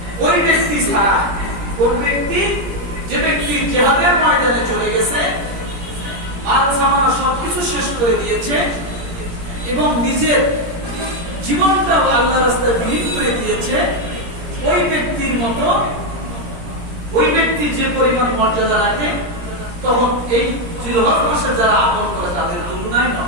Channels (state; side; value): late; left; 17 ms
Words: ওই ব্যক্তি ছাড়া, কোন ব্যক্তি? যে ব্যক্তি জিহাদের ময়দানে চলে গেছে, মাল সামানা সবকিছু শেষ করে দিয়েছে এবং নিজের জীবনটাও আল্লাহর রাস্তায় বিলীন করে দিয়েছে, ওই ব্যক্তির মতো ওই ব্যক্তি যে পরিমাণ মর্যাদা রাখে, তখন এই জিলহজ মাসে যারা আমল করে তাদের তুলনায়